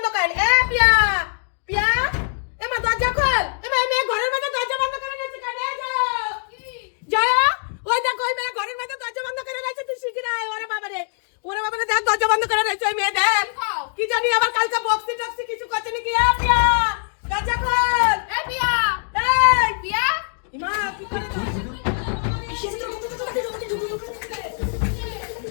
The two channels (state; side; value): silent; right; 60 dB below the other